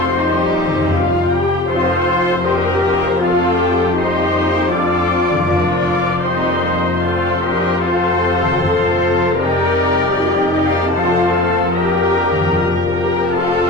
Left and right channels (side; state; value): both; normal; correlation 0.37